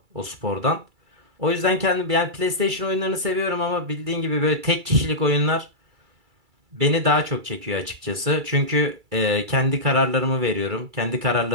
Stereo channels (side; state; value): left; late; 2.3 ms